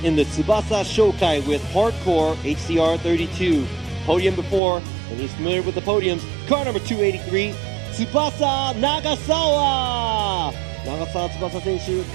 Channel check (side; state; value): left; drops out; at 4.6 s